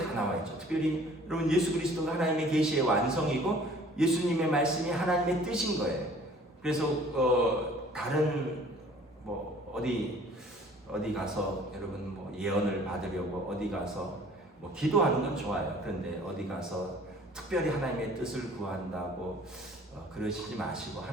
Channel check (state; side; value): normal; both; correlation 0.52